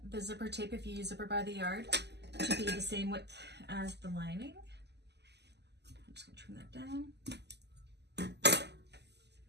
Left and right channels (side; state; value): left; late; 0.50 ms